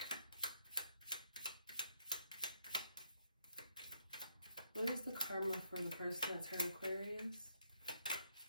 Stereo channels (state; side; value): inverted; both; correlation -0.72